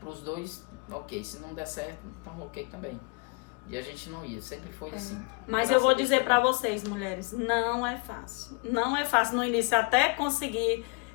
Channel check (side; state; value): right; quieter; 33.0 dB